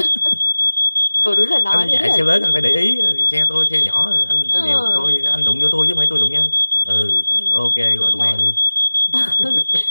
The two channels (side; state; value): both; inverted; correlation -1.00